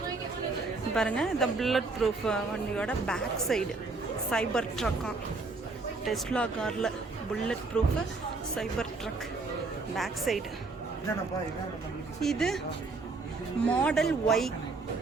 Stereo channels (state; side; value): quieter; left; 3.7 dB